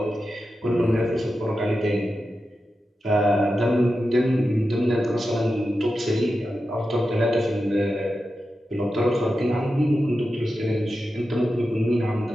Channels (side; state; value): both; normal; correlation 0.90